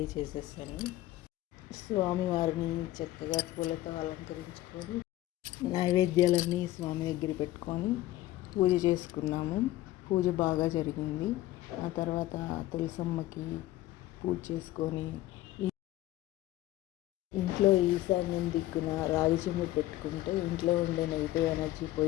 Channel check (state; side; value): quieter; right; 15.7 dB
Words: చేసేసాను. స్వామివారిని చక్కగా పూలతో అలంకరించుకొని నైవేద్యాలన్నీ స్వామి దగ్గర పెట్టుకొని పూజ చేసుకున్నాము. పూజ బాగా జరిగింది. ఆ తర్వాత తులసమ్మకి పూజ చేసుకొని ఇంట్లో ఈశాన్యం దిక్కున రాగి చెంబు పెట్టుకుంటే ఇంట్లో ఉండే నెగిటివ్ ఎనర్జీ